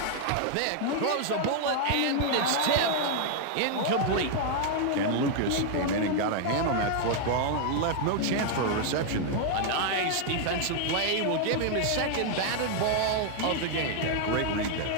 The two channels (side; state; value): both; different; correlation 0.00